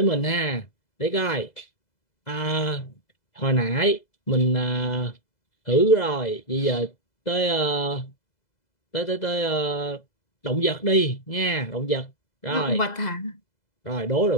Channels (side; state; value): right; late; 2.0 ms